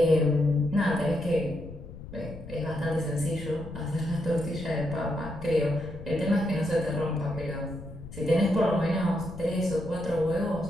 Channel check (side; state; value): left; noise; rumble, 14 dB below the sound